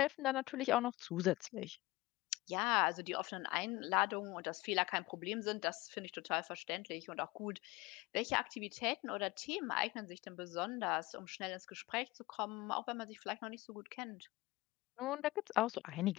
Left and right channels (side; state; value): right; quieter; 20.0 dB